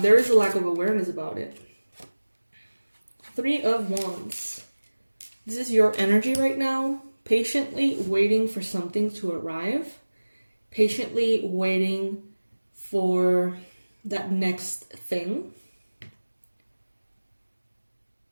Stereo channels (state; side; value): inverted; both; correlation -1.00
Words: is a lack of awareness about it. 3 of Wands. This is your energy right now. Patiently waiting for something to arrive. Patiently waiting for that next thing.